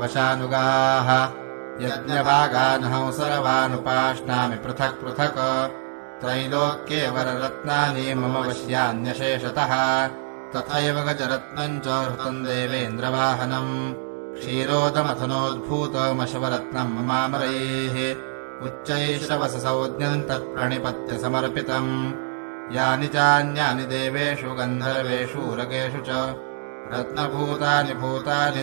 यज्ञभागानहं सर्वानुपाश्नामि पृथक् पृथक् त्रैलोक्ये वररत्नानि मम वश्यान्यशेषतः तथैव गजरत्नम् च हृतम् देवेन्द्रवाहनम् क्षीरोदमथनोद्भूतमशवरत्नम् ममामरैः उच्चैश्रवससंज्ञम् तत्प्रणिपत्य समर्पितम् यानि चान्यानि देवेषु गन्धर्वेषु उरगेषु च रत्नभूतानि भूतानि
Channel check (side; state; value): left; silent; digital silence